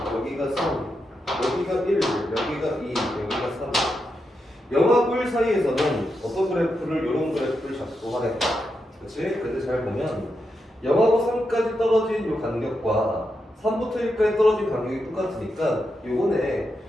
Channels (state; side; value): normal; both; correlation 0.85